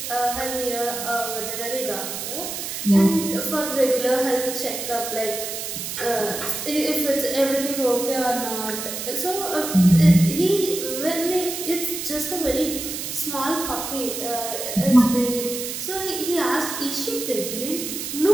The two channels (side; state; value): right; noise; hiss, 6 dB below the sound